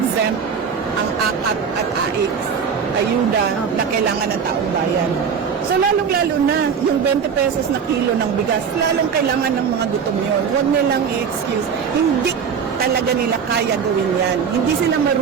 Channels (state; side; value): quieter; left; 6.7 dB